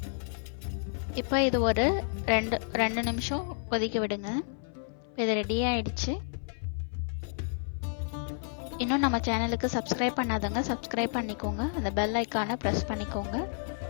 இப்போ இது ஒரு 2 நிமிஷம் கொதிக்க விடுங்க. இது ரெடி ஆயிடுச்சு. இன்னும் நம்ம சேனலுக்கு சப்ஸ்கிரைப் பண்ணாதவங்க சப்ஸ்கிரைப் பண்ணிக்கோங்க. அந்த பெல் ஐக்கானை ப்ரெஸ் பண்ணிக்கோங்க.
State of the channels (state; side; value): silent; right; 57 dB below the other